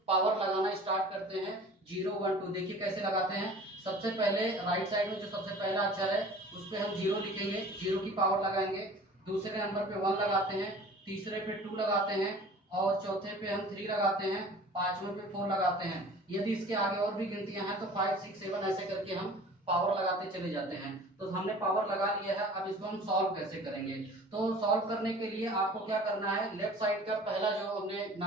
पावर लगाना स्टार्ट करते हैं। 0 1 2 देखिए कैसे लगाते हैं। सबसे पहले राइट साइड में जो सबसे पहला अक्षर है उस पे हम 0 लिखेंगे, 0 की पावर लगाएंगे। दूसरे नंबर पे 1 लगाते हैं, तीसरे पे 2 लगाते हैं, और चौथे पे हम 3 लगाते हैं, पांचवें पे 4 लगाते हैं। यदि इसके आगे और भी गिनतियां हैं तो 5 6 7 ऐसे करके हम पावर लगाते चले जाते हैं। तो हमने पावर लगा लिया है। अब इसको हम सॉल्व कैसे करेंगे, तो सॉल्व करने के लिए आपको क्या करना है, लेफ्ट साइड का पहला जो हमने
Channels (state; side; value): normal; both; correlation 0.44